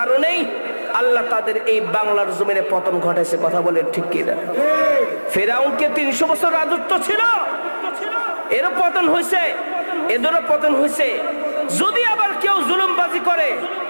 আল্লাহ তাদের এই বাংলার জমিনে পতন ঘটাইছে। কথা বলেন ঠিক কিনা? ফেরাউনকে 300 বছর রাজত্ব ছিল, এরও পতন হয়েছে, এদেরও পতন হয়েছে। যদি আবার কেউ জুলুমবাজি করে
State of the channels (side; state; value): both; inverted; correlation -1.00